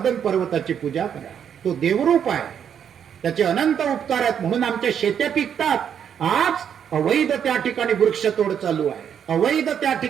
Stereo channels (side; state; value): left; quieter; 8.4 dB